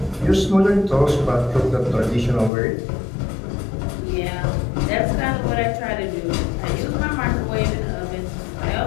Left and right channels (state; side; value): drops out; right; at 2.5 s